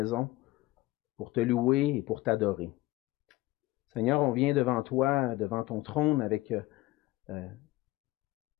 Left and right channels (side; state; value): right; quieter; 18.5 dB